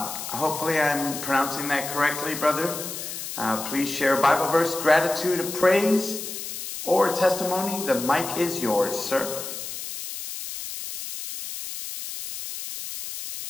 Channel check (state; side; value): noise; left; hiss, 8 dB below the sound